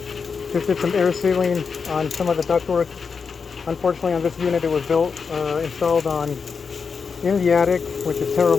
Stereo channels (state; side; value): quieter; right; 5.5 dB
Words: Just did some air sealing on some of the ductwork. Unfortunately, on this unit, it was installed in the attic, which is